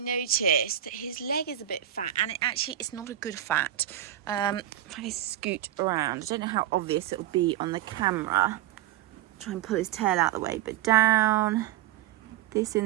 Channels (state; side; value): quieter; left; 12.2 dB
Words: noticed that his leg is a bit fat, and it's not a good fat. If I scoot around, I don't know how obvious it'll be on the camera. Try and pull his tail out of the way, but down. This